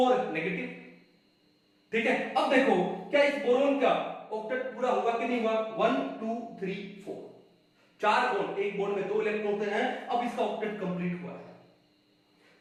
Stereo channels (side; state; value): both; identical; correlation 1.00